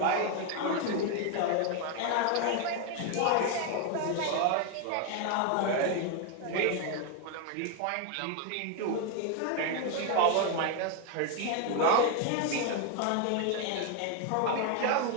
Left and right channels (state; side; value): different; both; correlation 0.01